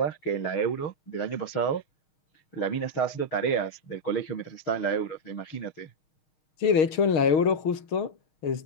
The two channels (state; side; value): late; right; 6.5 ms